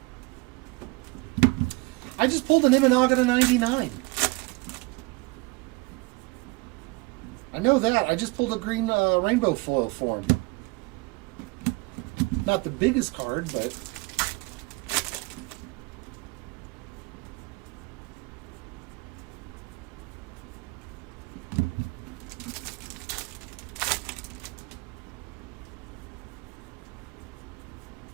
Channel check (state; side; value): quieter; left; 25.6 dB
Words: I just pulled an Imanaga to 99. I know that. I just pulled a green rainbow foil for him. Not the biggest card, but...